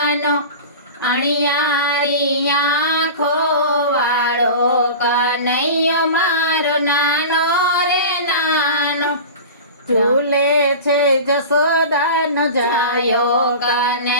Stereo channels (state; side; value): inverted; both; correlation -0.33